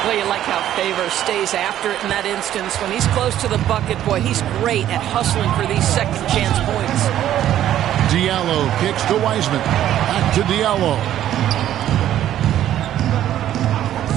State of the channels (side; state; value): left; quieter; 11.9 dB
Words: Well, you like how Favors stays after it in that instance. When he's close to the bucket, boy, he's great at hustling for these second chance points. Diallo kicks to Wiseman. Back to Diallo.